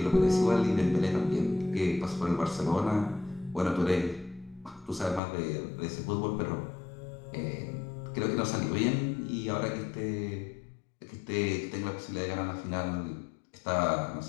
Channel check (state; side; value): drops out; right; at 5.2 s